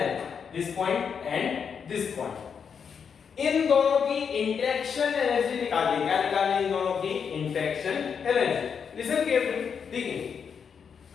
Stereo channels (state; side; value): quieter; right; 6.7 dB